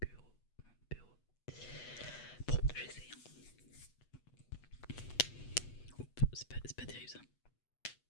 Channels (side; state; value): right; late; 8.2 ms